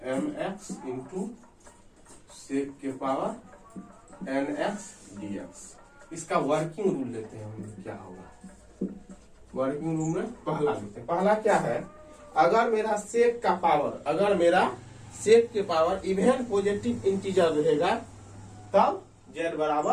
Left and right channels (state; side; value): identical; both; correlation 1.00